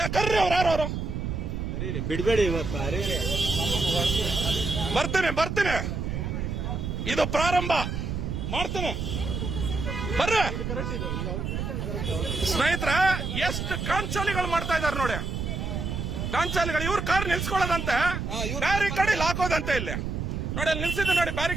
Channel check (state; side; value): noise; right; rumble, 3 dB below the sound